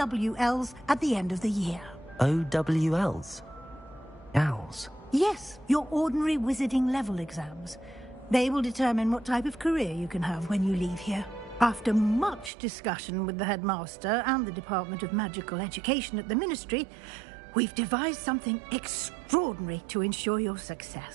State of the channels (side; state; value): left; drops out; at 12.5 s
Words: at the end of the year. OWLs? Owls? Yes, your ordinary wizarding level exams. They will determine what type of career you can have when you leave here. After much discussion with the headmaster and the Department of Magical Education at the Ministry, we've devised something extraordinary to ensure your